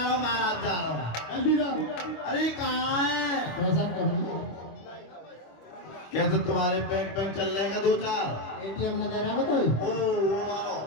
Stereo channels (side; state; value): right; late; 25 ms